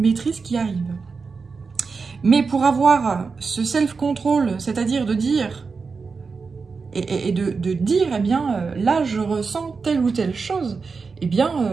qui arrive. Mais pour avoir ce self-control, c'est-à-dire de dire, et de dire, eh bien, là, je ressens telle ou telle chose, eh bien,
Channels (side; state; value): left; quieter; 4.8 dB